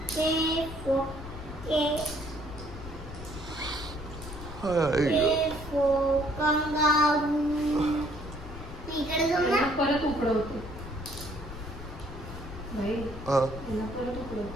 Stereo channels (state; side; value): noise; left; rumble, 11 dB below the sound